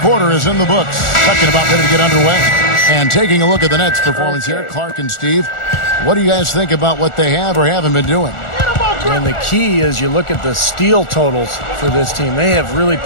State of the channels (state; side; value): late; right; 1.4 ms